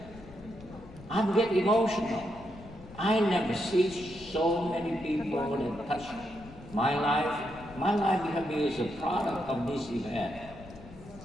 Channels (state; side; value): noise; left; rumble, 18 dB below the sound